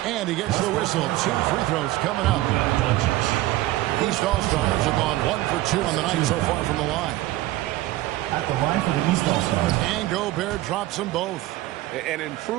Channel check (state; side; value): quieter; left; 16.8 dB